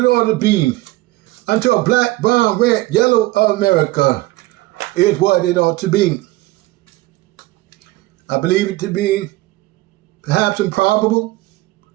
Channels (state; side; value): quieter; left; 19.1 dB